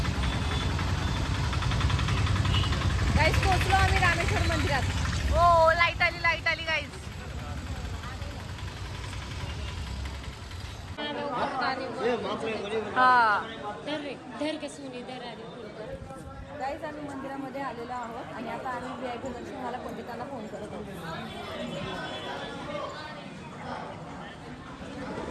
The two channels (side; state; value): both; identical; correlation 1.00